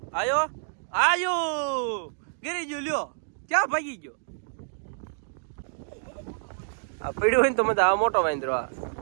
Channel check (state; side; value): silent; left; digital silence